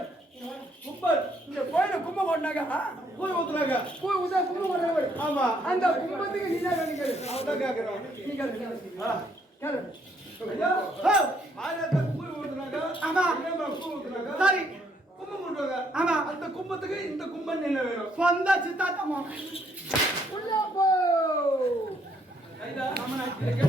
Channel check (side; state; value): both; normal; correlation 0.69